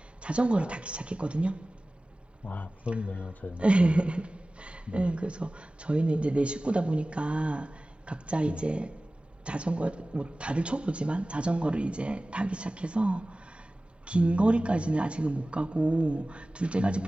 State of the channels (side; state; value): both; normal; correlation 0.97